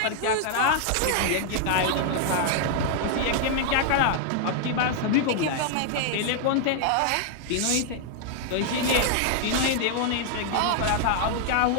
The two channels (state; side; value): different; both; correlation 0.00